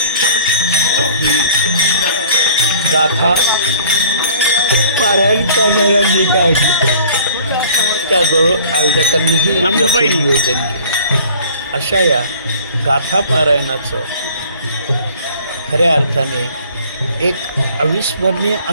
ही गाथा पारायण करणाऱ्यांनी काढली, त्याचबरोबर आयोजकांनीही नियोजन केले। अशा या गाथा पारायणाचं खऱ्या अर्थाने एक अविस्मरणीय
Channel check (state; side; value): inverted; both; correlation -0.51